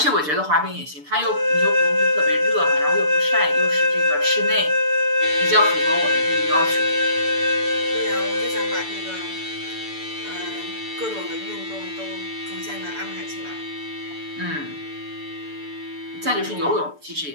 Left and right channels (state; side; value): late; left; 6.8 ms